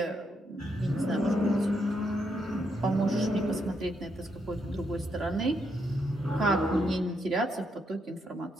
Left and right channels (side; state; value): both; normal; correlation 0.78